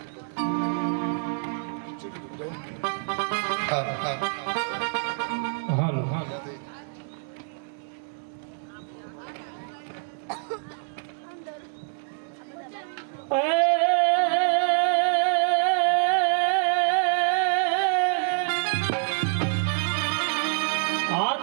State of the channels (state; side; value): silent; left; 59 dB below the other